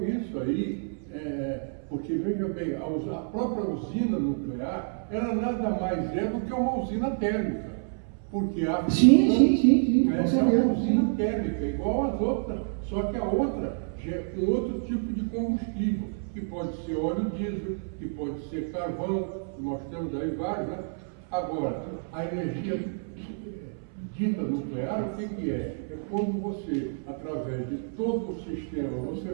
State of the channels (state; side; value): silent; left; 59 dB below the other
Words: isso aí, porque veja bem, a própria usina nuclear, ela nada mais é do que uma usina térmica, porque a Sim, é uma usina térmica, igual às outras, só que a outra é um outro tipo de combustível, que pode ser óleo diesel, que pode ser carvão, nós temos aí vários, né? Agora, a energia dita nuclear, o que é? É quando você, através de todo o sistema, você